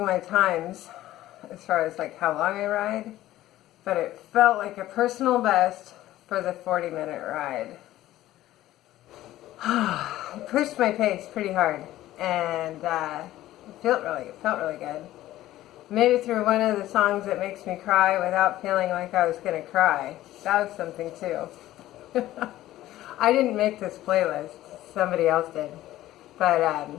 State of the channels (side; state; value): right; quieter; 14.8 dB